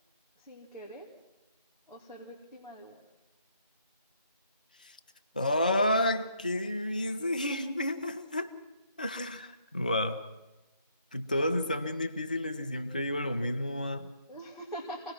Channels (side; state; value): both; inverted; correlation -0.70